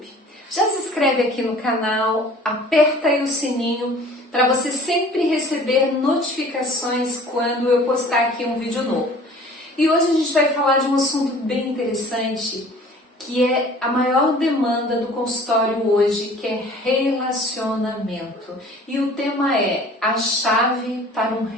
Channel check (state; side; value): normal; both; correlation 0.48